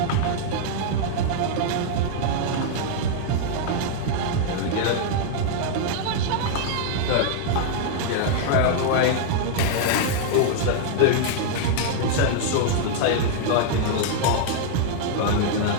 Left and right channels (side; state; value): both; different; correlation -0.01